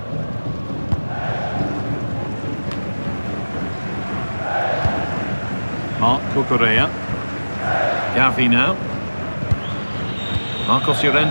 Marc Cucurella. Gavi now. Marcos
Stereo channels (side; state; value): both; inverted; correlation -1.00